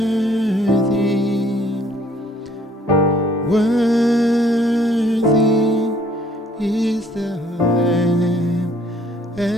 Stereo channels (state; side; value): normal; both; correlation 0.61